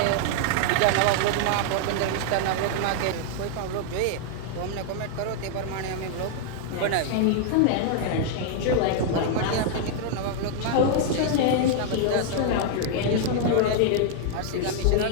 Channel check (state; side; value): different; both; correlation 0.00